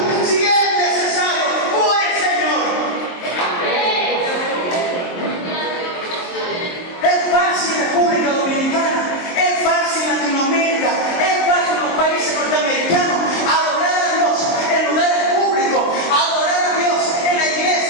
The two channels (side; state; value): right; late; 23 ms